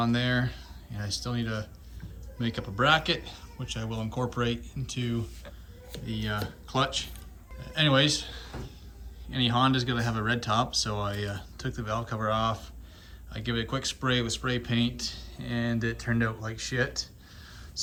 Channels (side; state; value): both; identical; correlation 1.00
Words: there, and I still need to make up a bracket, which I will incorporate into the clutch. Anyways, any Honda's gonna have a red top, so I took the valve cover off. I give it a quick spray with spray paint, and it turned out like shit.